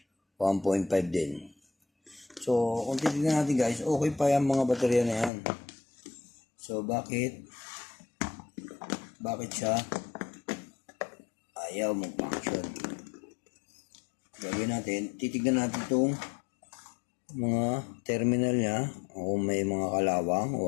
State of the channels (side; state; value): right; drops out; at 5.3 s